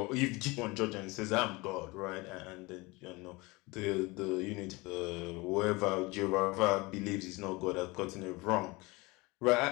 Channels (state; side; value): quieter; right; 24.1 dB